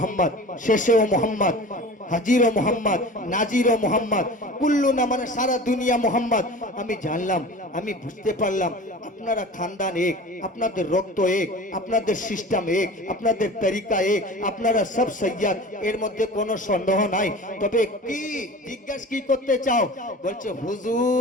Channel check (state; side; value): normal; both; correlation 0.38